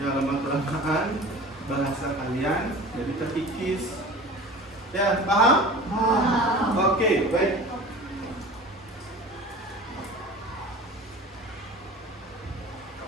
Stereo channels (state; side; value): normal; both; correlation 0.39